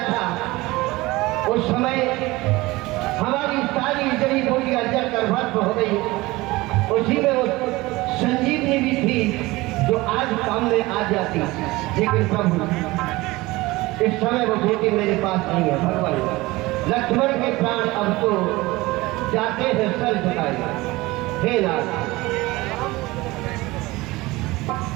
था, उस समय हमारी सारी जड़ी बूटियां जलकर भस्म हो गई। उसी में वो संजीवनी भी थी जो आज काम में आ जाती, लेकिन प्रभु इस समय वो बूटी मेरे पास नहीं है। भगवान, लक्ष्मण के प्राण अब तो जाते हैं सर झुकाए। हे नाथ,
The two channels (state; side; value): quieter; left; 20.6 dB